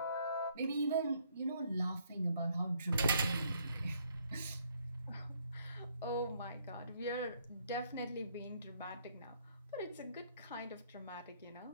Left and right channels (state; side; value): inverted; both; correlation -0.68